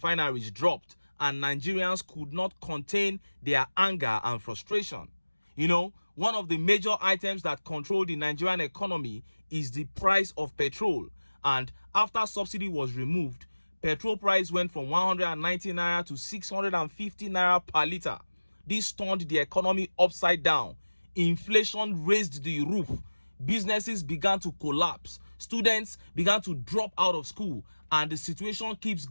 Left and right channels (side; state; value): both; inverted; correlation -1.00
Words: dropped, and Nigerians could not contain their anger and frustration. One of the major items that control the Nigerian economy is the price of petrol. And after subsidy was removed, petrol price went from 190 naira to 650 naira per liter. This turned the economy upside down. Inflation raised the roof. Businesses began to collapse. Students began to drop out of school. And the situation keeps